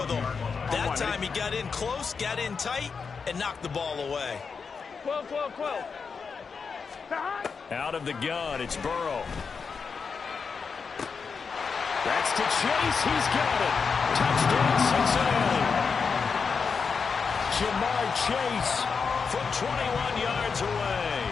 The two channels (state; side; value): quieter; right; 5.5 dB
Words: them. That time he got in close, got in tight, and knocked the ball away. 12, 12, 12. Out of the gun, it's Burrow. That's to Chase. He's got it. Touchdown, Cincinnati. Jamar Chase from 21 yards away.